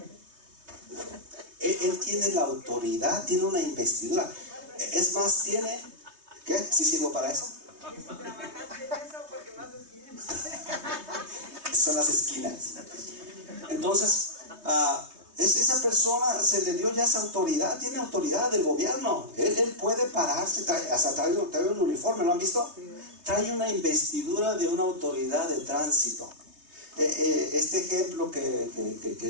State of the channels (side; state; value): left; late; 3.2 ms